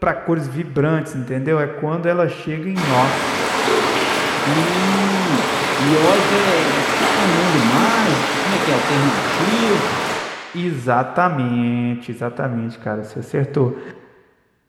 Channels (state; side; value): identical; both; correlation 1.00